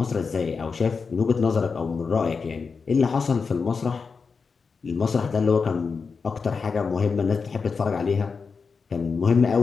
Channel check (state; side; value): quieter; right; 5.1 dB